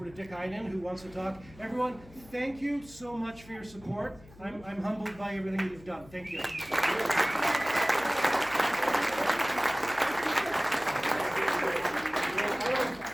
to Dick Iden, who wants to talk. Everyone, thank you so much for your support. I'm humbled by everything that you've done. Thank you.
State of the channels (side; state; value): left; noise; hum, 21 dB below the sound